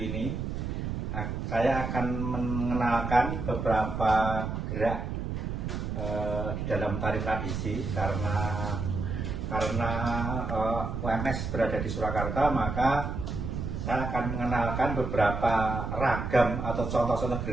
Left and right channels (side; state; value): right; noise; rumble, 3 dB below the sound